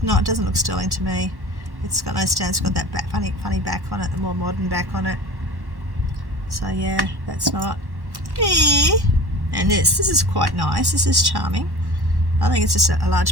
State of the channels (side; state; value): left; late; 1.1 ms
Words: not. It doesn't look sterling to me. It's got no stones. It's got that funny back on it, the more modern back on it. So yeah, that's not. And this is quite nice. This is charming. I think it's just a